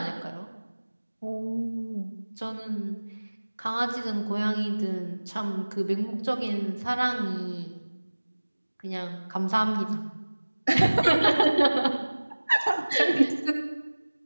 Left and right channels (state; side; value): inverted; both; correlation -1.00